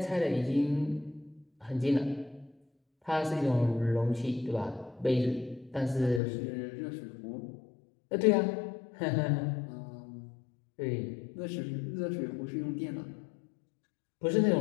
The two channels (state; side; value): drops out; right; at 6.2 s